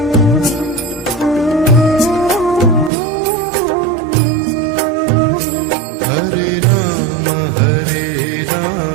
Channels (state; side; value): drops out; left; at 2.9 s